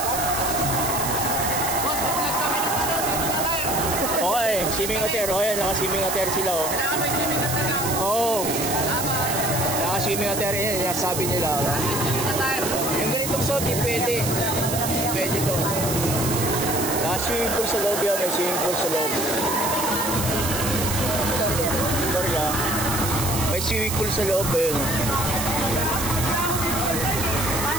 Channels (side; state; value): right; noise; hiss, 3 dB below the sound